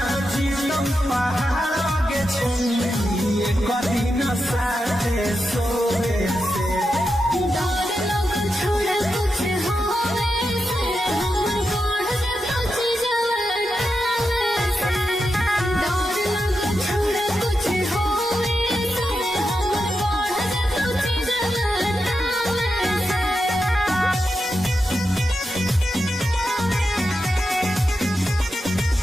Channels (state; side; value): normal; both; correlation 0.88